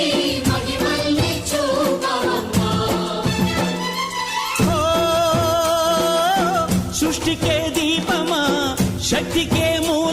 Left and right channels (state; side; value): identical; both; correlation 1.00